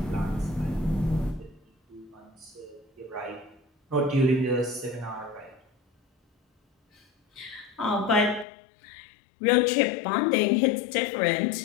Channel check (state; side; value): drops out; right; at 8.5 s